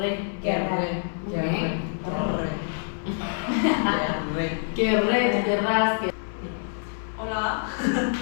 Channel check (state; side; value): silent; right; 56 dB below the other